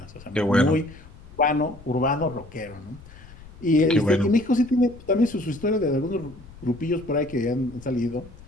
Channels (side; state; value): left; noise; rumble, 20 dB below the sound